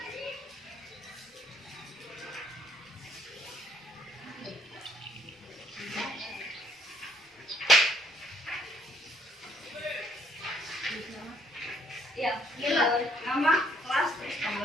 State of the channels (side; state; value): both; normal; correlation 0.65